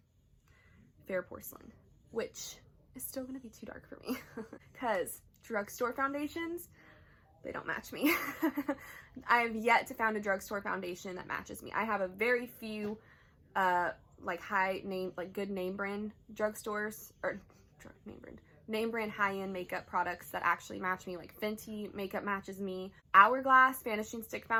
Fair Porcelain, which is still gonna be too dark for me because drugstore foundations, they don't match me. I have yet to find a drugstore foundation that matches me. I have a very few like good name brand drugstores, or name brand high-end makeup products that actually match me. Like Fenty makeup matches me. Hourglass Vanishing Stick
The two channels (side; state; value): both; identical; correlation 1.00